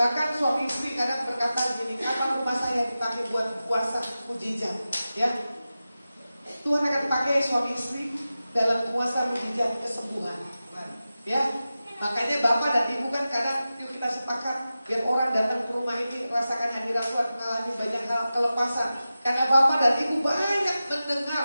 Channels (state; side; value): inverted; both; correlation -0.94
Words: suami istri kadang berkata gini, karena rumah saya dipakai buat kuasa mujizat, ya. Tuhan akan pakai suami istri dalam kuasa mujizat kesembuhan, ya. Makanya Bapak dan Ibu kan kadang yuk kita sepakat biar orang datang ke rumah ini rasakan hadirat Tuhan, mengalami banyak hal kelepasan. Karena Bapak dan Ibu banyak